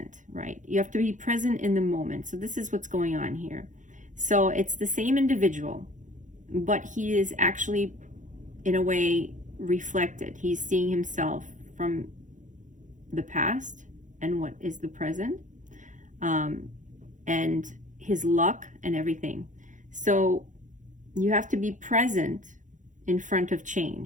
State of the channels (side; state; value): left; late; 0.36 ms